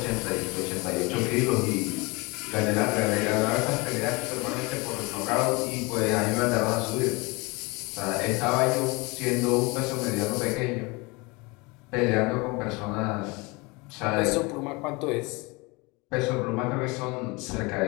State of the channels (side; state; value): right; quieter; 26.3 dB